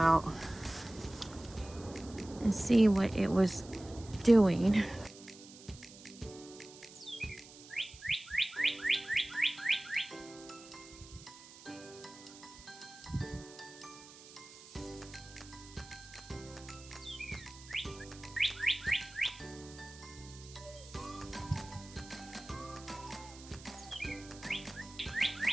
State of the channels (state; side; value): noise; right; hiss, 18 dB below the sound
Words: and see what it was doing.